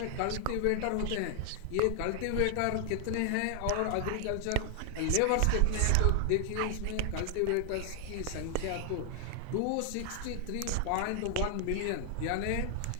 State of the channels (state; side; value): different; both; correlation 0.00